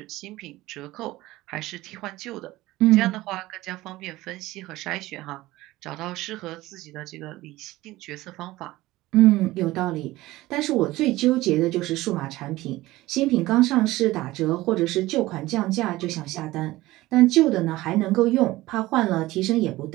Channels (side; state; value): left; quieter; 17.9 dB